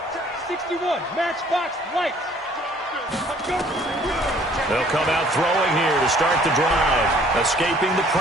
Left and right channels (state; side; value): normal; both; correlation 0.57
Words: 61, matchbox, lights. They'll come out throwing here to start the drive. Escaping the